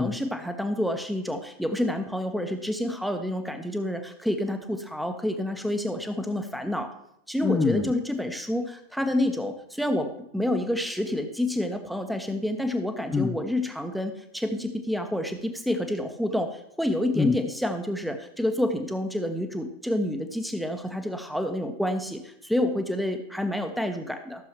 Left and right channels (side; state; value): both; normal; correlation 0.79